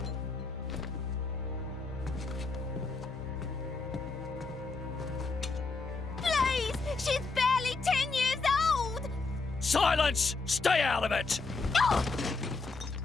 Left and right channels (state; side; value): quieter; right; 4.0 dB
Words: Please! She's barely 10 years old! Silence! Stay out of it! Oh!